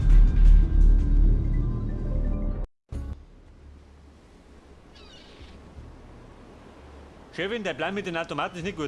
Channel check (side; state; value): both; identical; correlation 1.00